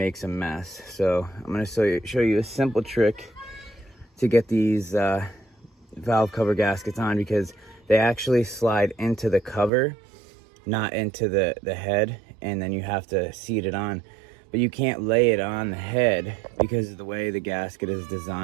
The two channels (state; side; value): drops out; left; at 9.7 s